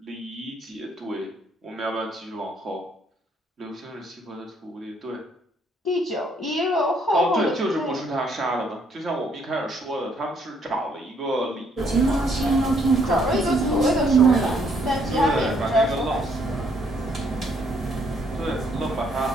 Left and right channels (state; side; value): normal; both; correlation 0.68